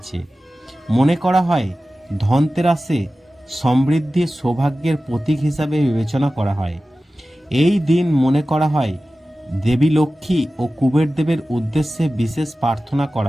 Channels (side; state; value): both; normal; correlation 0.95